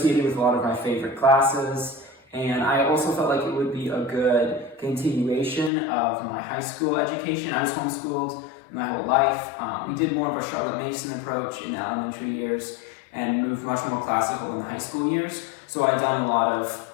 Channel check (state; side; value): drops out; right; at 5.7 s